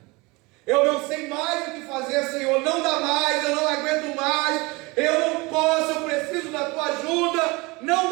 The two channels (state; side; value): quieter; left; 25.0 dB